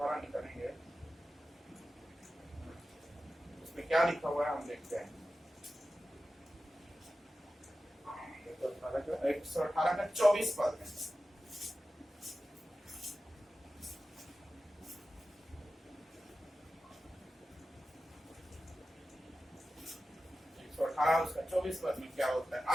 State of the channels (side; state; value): both; normal; correlation 0.94